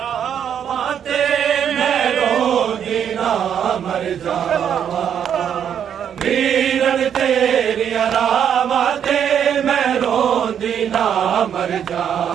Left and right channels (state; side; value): quieter; left; 8.7 dB